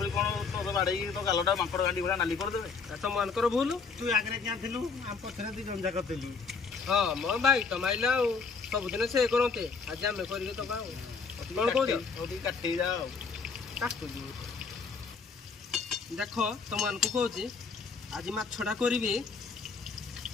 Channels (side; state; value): right; quieter; 5.0 dB